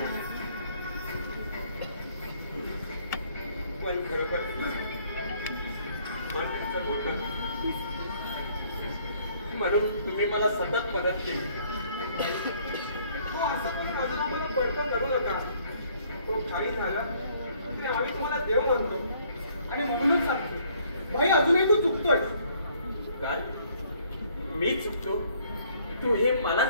पण खरोखर मन तुमचं होतं म्हणून तुम्ही मला सतत मदत केली. तो असं पण अजून आम्हाला बडकं करू नका. तो काही झाला तरी आम्ही तुम्हाला देव म्हणतो आणि म्हणूनच सांगतो, भाई अजूनही तू चुकतोय. काय मी चुकतो? तू हे मला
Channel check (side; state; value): both; inverted; correlation -0.63